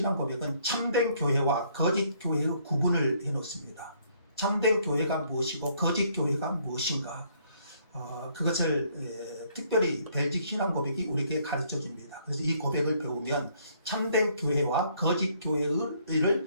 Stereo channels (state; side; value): inverted; both; correlation -0.66